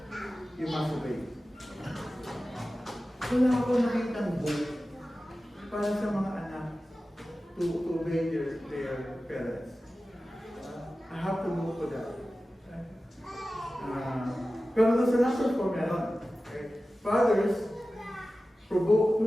you must obey. Wala ako nakitang book para sa mga anak to obey their parents. I have to look for that. Pero there's another for meron. Okay? Fathers,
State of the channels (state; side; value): normal; both; correlation 0.95